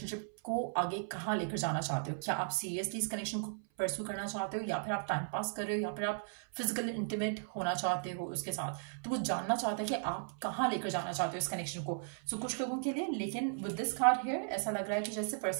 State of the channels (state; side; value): silent; left; 54 dB below the other